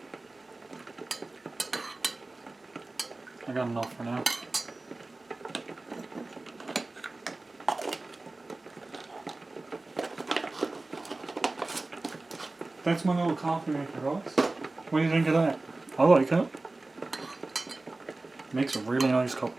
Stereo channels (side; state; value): left; quieter; 3.1 dB